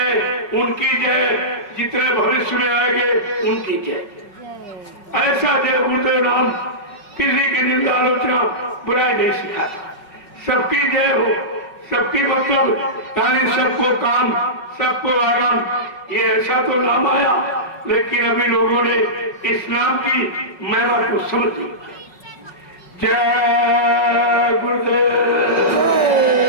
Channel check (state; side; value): late; right; 5.5 ms